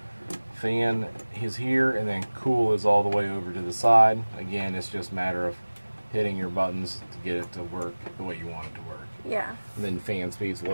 Fan is here, and then cool is all the way over to the side. Again, it's just a matter of hitting your buttons to get it to work the way you want it to work. Yeah. And then fan speeds,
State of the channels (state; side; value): inverted; both; correlation -1.00